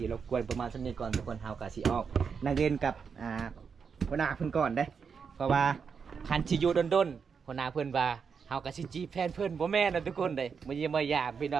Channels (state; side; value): quieter; left; 6.1 dB